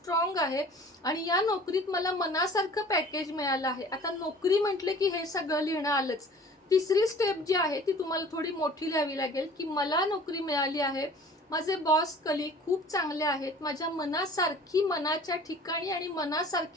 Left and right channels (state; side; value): normal; both; correlation 0.47